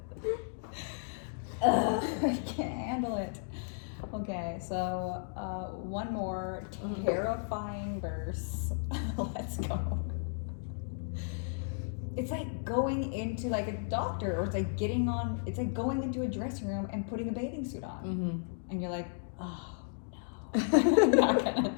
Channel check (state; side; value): silent; right; digital silence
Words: Ugh, I can't handle it. Okay, so one more terrifying verse. Let's go. It's like going into like a doctor, or it's like it's like going into a dressing room and putting a bathing suit on. Mm-hmm. And you're like, oh no, I'm not gonna